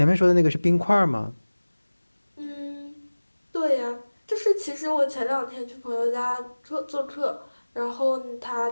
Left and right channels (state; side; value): inverted; both; correlation -1.00